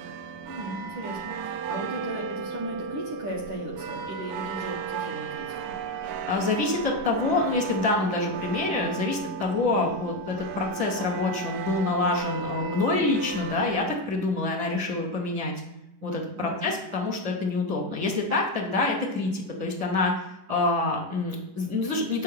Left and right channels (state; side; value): late; left; 10 ms